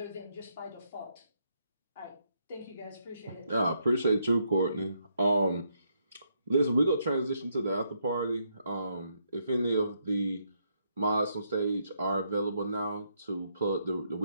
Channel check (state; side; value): inverted; both; correlation -0.76